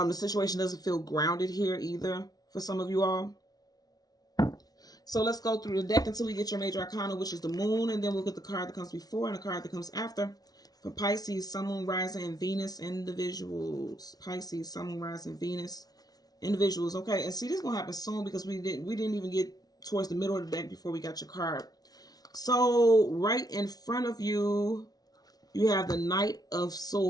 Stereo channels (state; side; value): late; right; 0.19 ms